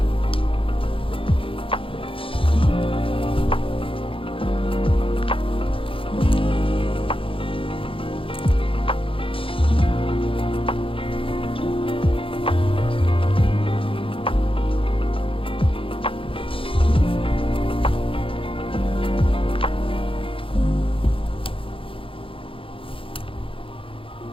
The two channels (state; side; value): late; right; 0.26 ms